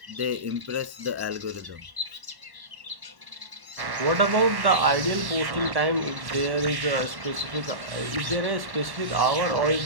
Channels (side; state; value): left; late; 1.1 ms